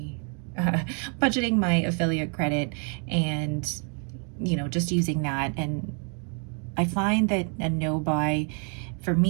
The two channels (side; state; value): left; quieter; 39.8 dB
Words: affiliate credit and just using that. And I find that a no buy for